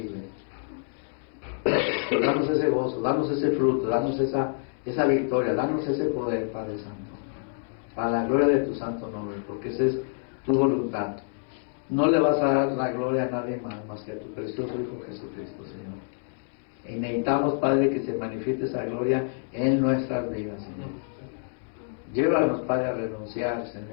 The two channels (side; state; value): right; silent; 60 dB below the other